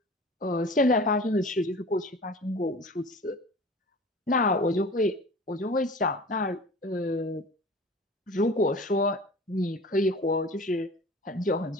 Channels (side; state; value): both; normal; correlation 0.41